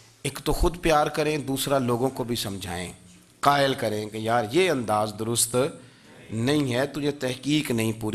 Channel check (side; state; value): both; identical; correlation 1.00